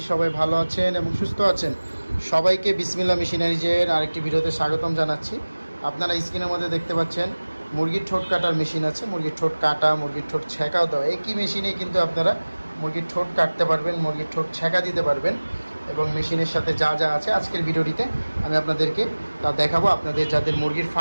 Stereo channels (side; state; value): both; inverted; correlation -1.00